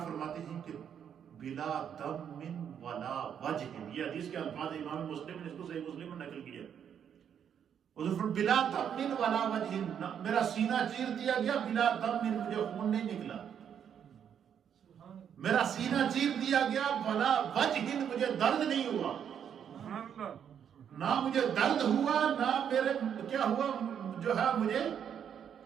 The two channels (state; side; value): quieter; left; 8.5 dB